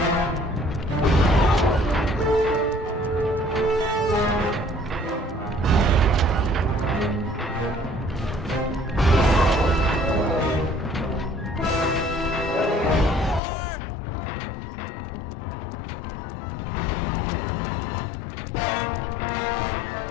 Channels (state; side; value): drops out; right; at 13.4 s